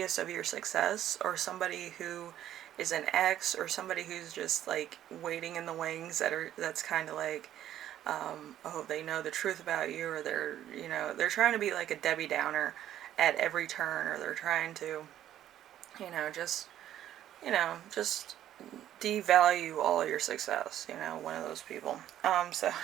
of your success, or somebody who is an ex, or somebody who's just like waiting in the wings, that's kind of like, oh, they know the truth about you, or they're trying to be like a Debbie Downer at every turn, or they're trying to, just devalue all of your success, one of those people. So,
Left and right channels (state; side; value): quieter; left; 11.8 dB